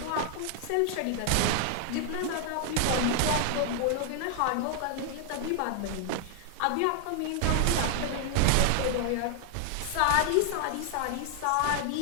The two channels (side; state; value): both; different; correlation 0.00